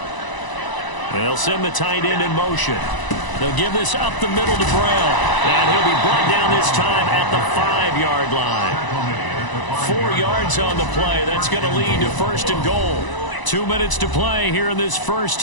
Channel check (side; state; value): right; late; 1.0 ms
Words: They'll send the tight end in motion. They'll give this up the middle to Brown. And he'll be brought down this time at the 5-yard line. 4 yards on the play. That's going to lead to first and goal. 2 minutes to play here in this first